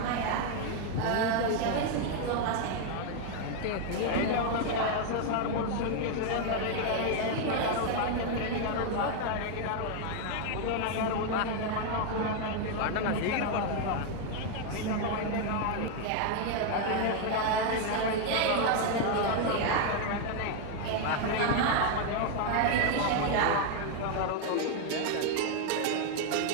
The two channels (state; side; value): different; both; correlation 0.01